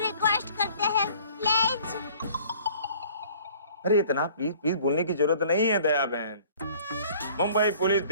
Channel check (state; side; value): inverted; both; correlation -0.52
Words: रिक्वेस्ट करते हैं, प्लीज। अरे इतना प्लीज बोलने की जरूरत नहीं है दया बहन। मुंबई पुलिस